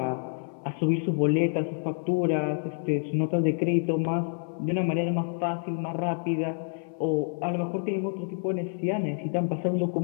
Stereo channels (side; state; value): right; silent; 59 dB below the other